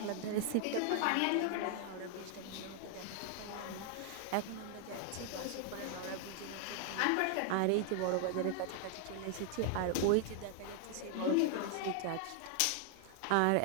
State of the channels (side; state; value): both; different; correlation 0.00